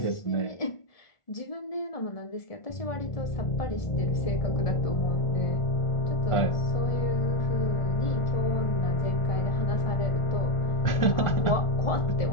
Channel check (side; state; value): right; late; 1.4 ms